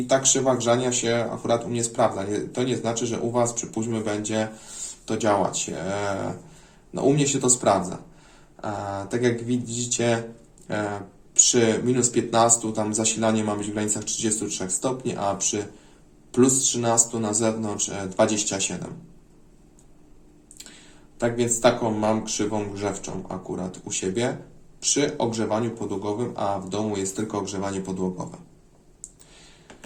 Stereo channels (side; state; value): both; identical; correlation 1.00